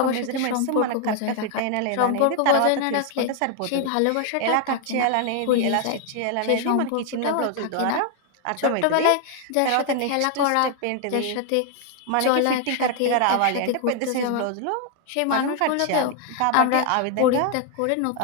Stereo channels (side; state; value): both; different; correlation 0.00